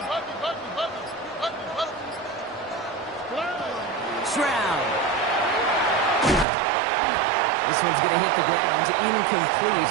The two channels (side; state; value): left; drops out; at 6.5 s